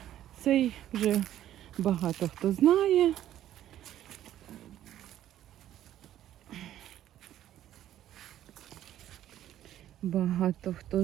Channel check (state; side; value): quieter; left; 12.1 dB